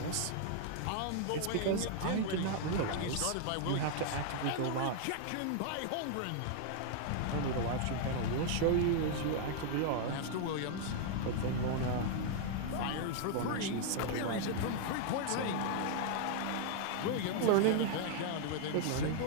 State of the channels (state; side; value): different; both; correlation 0.00